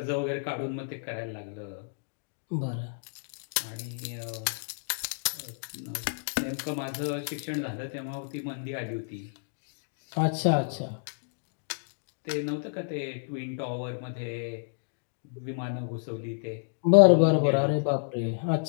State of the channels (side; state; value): right; silent; digital silence